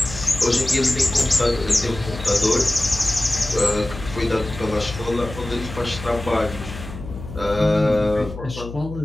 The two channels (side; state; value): left; noise; hum, 11 dB below the sound